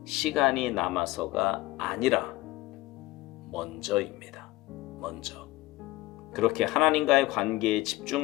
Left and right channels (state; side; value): quieter; right; 18.4 dB